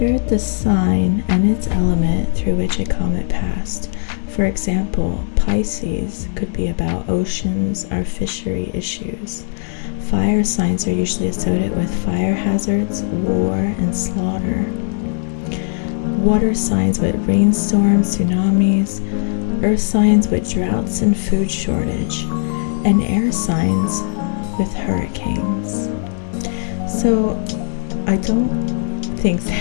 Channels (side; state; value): right; silent; digital silence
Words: the sign and its element through which a comet passed. For example, Pisces could be about oceans or fishery issues. Fire signs are usually associated with fire hazards, war, and slaughter. Water signs with rainstorms, tsunamis. Earth signs with droughts and food shortage. And air signs with hurricanes. So I don't think